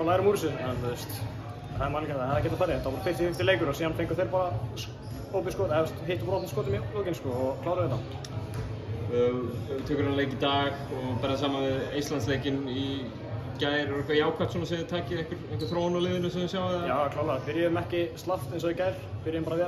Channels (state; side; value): identical; both; correlation 1.00